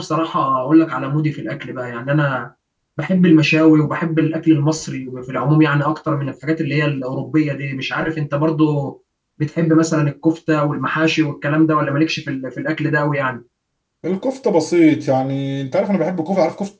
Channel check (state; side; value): identical; both; correlation 1.00